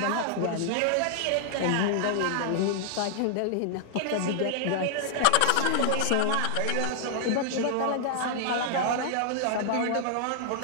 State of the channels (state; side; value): different; both; correlation 0.00